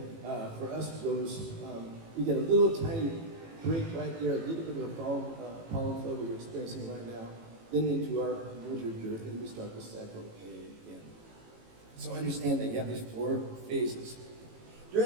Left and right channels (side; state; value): left; late; 18 ms